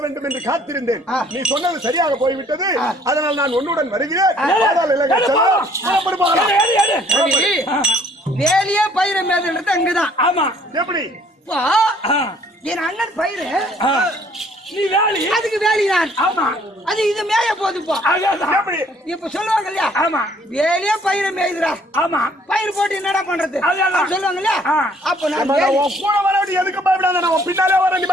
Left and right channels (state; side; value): normal; both; correlation 0.60